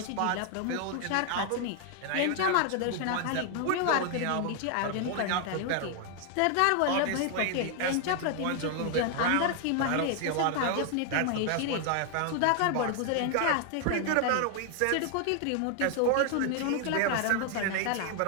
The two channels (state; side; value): different; both; correlation 0.00